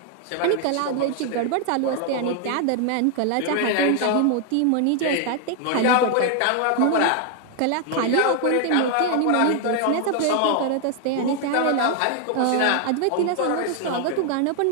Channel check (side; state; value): both; different; correlation 0.00